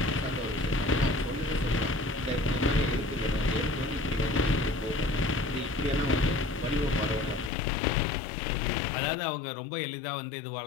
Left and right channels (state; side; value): drops out; right; at 7.5 s